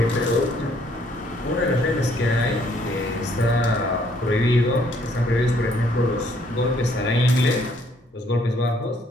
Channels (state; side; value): normal; both; correlation 0.65